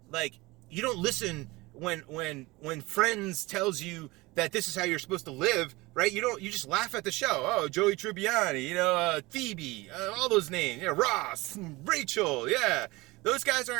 like, you don't listen when Friends tells you that this is how you're supposed to live, right? You just laugh at the show. Oh, Joey Tribbiani, Phoebe, all those names, Ross, Rachel, yeah. Those guys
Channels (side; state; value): left; quieter; 22.0 dB